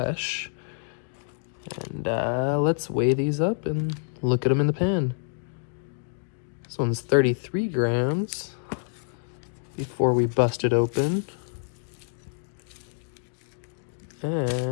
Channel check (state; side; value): silent; right; digital silence